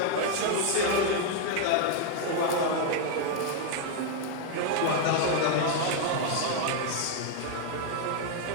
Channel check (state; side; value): different; both; correlation 0.01